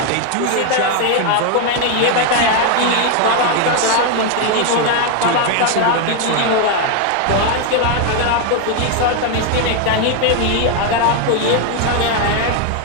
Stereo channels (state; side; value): different; both; correlation 0.01